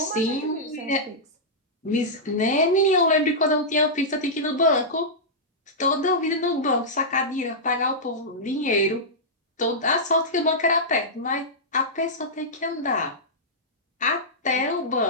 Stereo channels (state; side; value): normal; both; correlation -0.11